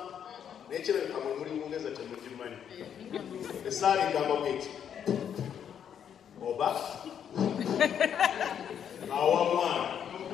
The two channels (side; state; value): right; quieter; 8.6 dB